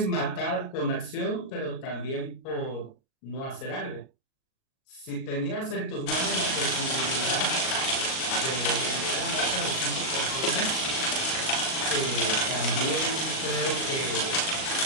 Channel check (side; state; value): right; late; 38 ms